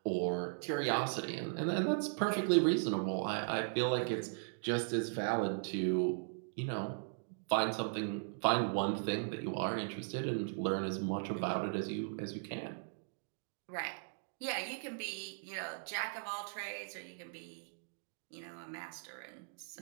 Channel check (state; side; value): silent; left; digital silence